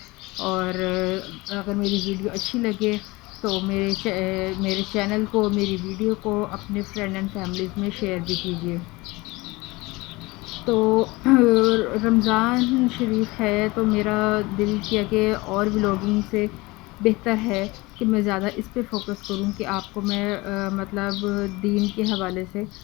اور اگر میری ویڈیو اچھی لگے تو میرے چینل کو، میری ویڈیو کو اپنے فرینڈ اینڈ فیملیز میں شیئر بھی کیجیے۔ تو رمضان شریف ہے تو میرا دل کیا کہ اور ولاگنگ سے بہتر ہے کہ میں زیادہ اس پہ فوکس کروں کہ آپ کو میں مطلب دین کے حوالے سے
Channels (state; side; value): quieter; right; 22.5 dB